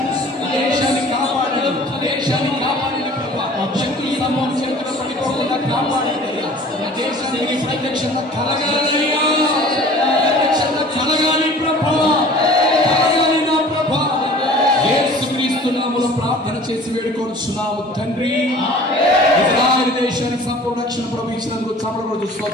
దేశాన్ని కాపాడండి, దేశాన్ని కాపాడండి ప్రభా. శక్తుల సమూహం చేతుల పడిపోకుండా కాపాడండి. దేశానికి ప్రత్యక్షంగా కలగాలయ్యా, ప్రత్యక్షంగా కలగాలి ప్రభా, కలగాలి నా ప్రభా. యేసుక్రీస్తు నామములో ప్రార్థన చేసి వేడుకొనుచున్నాము తండ్రి. ఇజ్రాయెల్ దేశానికి సంపూర్ణ రక్షణ ప్రభు ఇచ్చినందుకు చమరగొడు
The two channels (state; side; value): normal; both; correlation 0.46